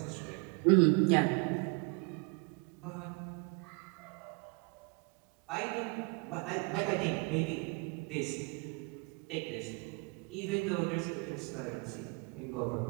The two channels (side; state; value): left; quieter; 31.7 dB